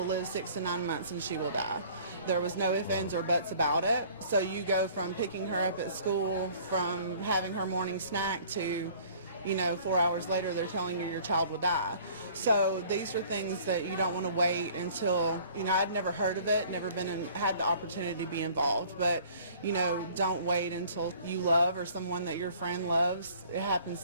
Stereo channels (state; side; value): inverted; both; correlation -0.52